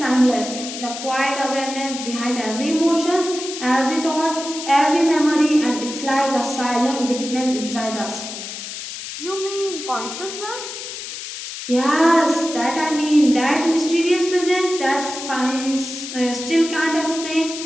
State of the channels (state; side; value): noise; left; hiss, 9 dB below the sound